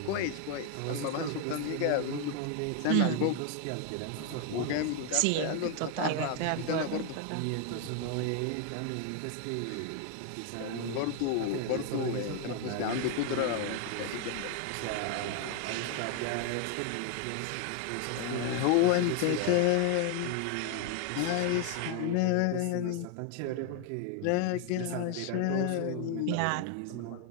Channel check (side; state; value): both; different; correlation 0.01